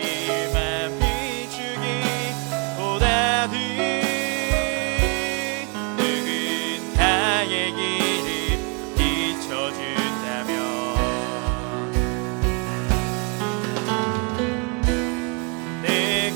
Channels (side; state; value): left; quieter; 34.6 dB